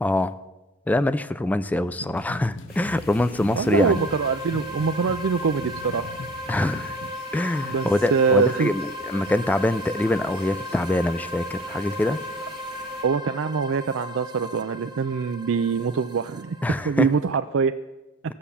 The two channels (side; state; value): both; normal; correlation 0.44